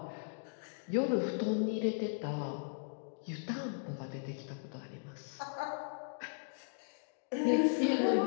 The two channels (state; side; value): silent; right; digital silence